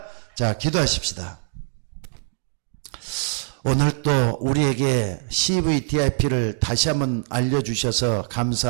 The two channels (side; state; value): left; silent; digital silence